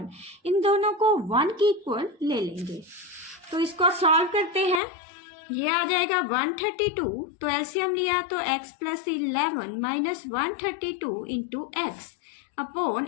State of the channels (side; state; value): right; drops out; at 4.8 s